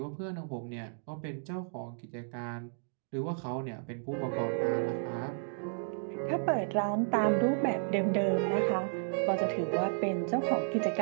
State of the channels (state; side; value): silent; left; digital silence